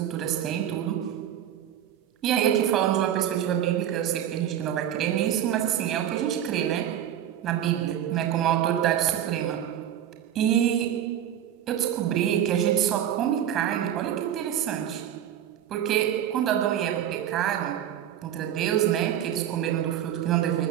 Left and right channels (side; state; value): left; quieter; 10.6 dB